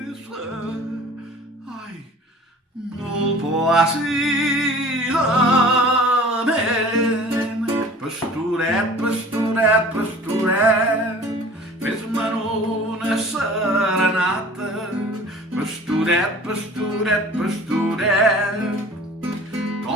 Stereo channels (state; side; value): normal; both; correlation 0.45